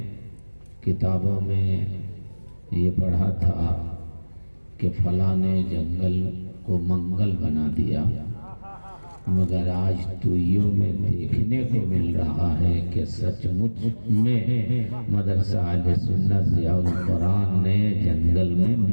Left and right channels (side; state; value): both; inverted; correlation -1.00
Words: کتابوں میں یہ پڑھا تھا کہ فلاں نے جنگل کو منگل بنا دیا، مگر آج توئیوں میں دیکھنے کو مل رہا ہے کہ سچ مچ میں مدرسہ اہل سنت ضیاء القرآن نے جنگل میں